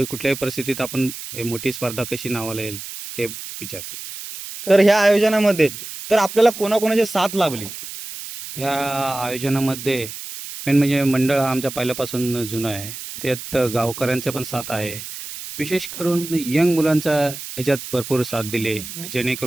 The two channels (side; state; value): right; noise; hiss, 10 dB below the sound